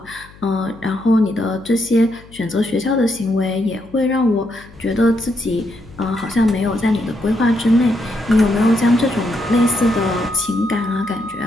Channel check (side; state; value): left; noise; hum, 23 dB below the sound